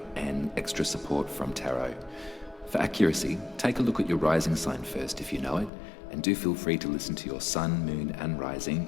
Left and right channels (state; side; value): drops out; right; at 5.7 s